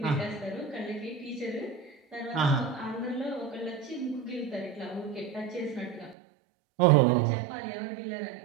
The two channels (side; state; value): left; drops out; at 6.2 s